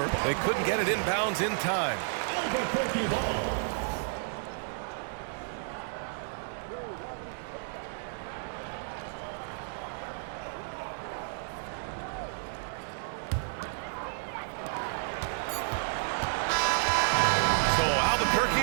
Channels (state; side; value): silent; left; digital silence